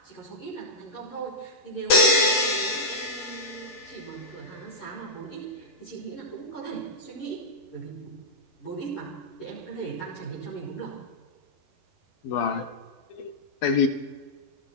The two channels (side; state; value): right; late; 11 ms